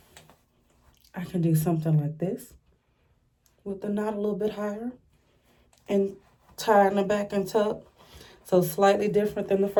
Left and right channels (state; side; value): identical; both; correlation 1.00